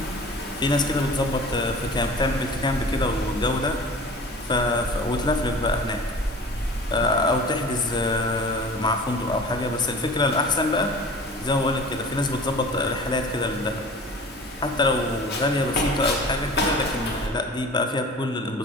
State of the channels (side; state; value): both; normal; correlation 0.41